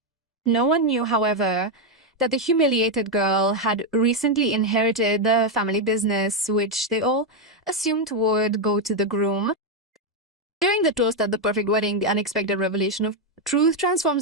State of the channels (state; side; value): normal; both; correlation 0.03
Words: No one knew, however, that the humiliated girl had recently inherited the family business, which they all assumed would go to the groom. During the toast at the perfect wedding, the unexpected revelation of truth